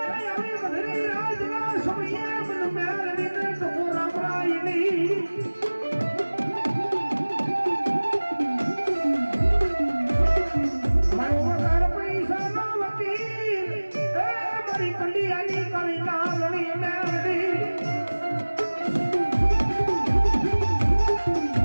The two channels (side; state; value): both; inverted; correlation -1.00